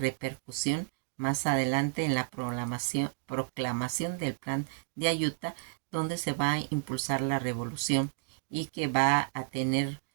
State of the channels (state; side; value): silent; left; digital silence